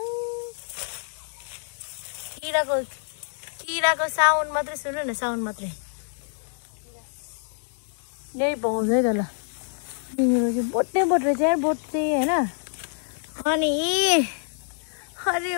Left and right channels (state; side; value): silent; right; 56 dB below the other